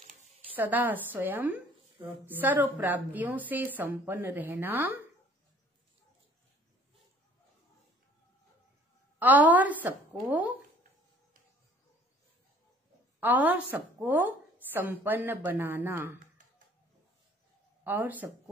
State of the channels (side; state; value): both; normal; correlation 0.55